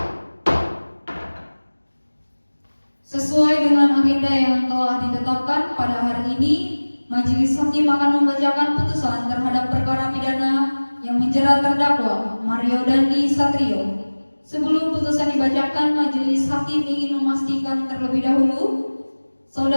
Sesuai dengan agenda yang telah ditetapkan pada hari ini, Majelis Hakim akan membacakan putusan terhadap perkara pidana yang menjerat terdakwa Mario Dandi Satrio. Sebelum putusan dibacakan, Majelis Hakim ingin memastikan terlebih dahulu,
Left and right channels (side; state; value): both; inverted; correlation -1.00